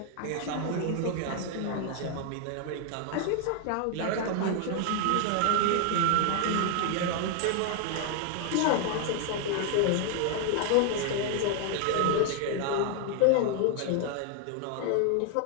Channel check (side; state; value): both; different; correlation 0.00